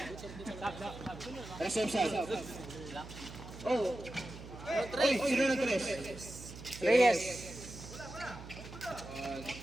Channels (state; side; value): noise; right; hum, 13 dB below the sound